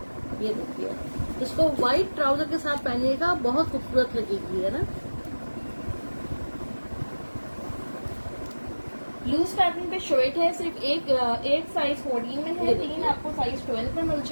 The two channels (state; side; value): inverted; both; correlation -1.00